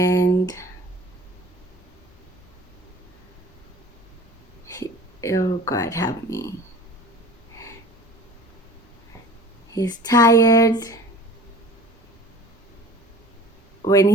oh God, help me. He's tired when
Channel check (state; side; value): normal; both; correlation 0.44